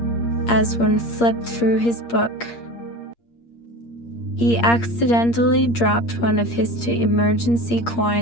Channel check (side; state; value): right; late; 8.6 ms